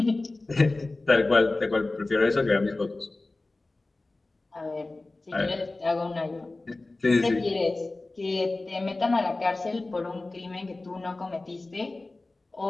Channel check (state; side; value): quieter; right; 3.1 dB